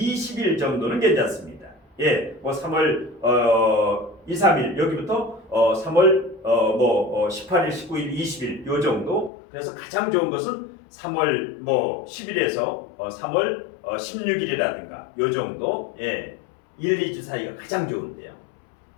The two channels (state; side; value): drops out; right; at 9.3 s